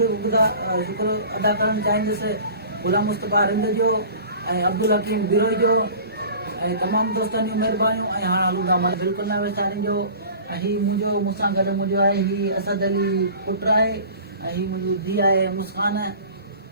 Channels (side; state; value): both; inverted; correlation -0.42